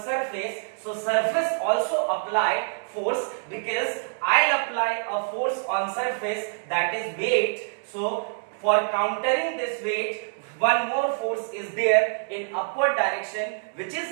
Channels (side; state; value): left; silent; digital silence